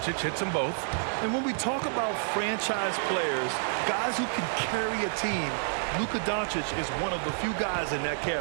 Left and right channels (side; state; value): left; silent; digital silence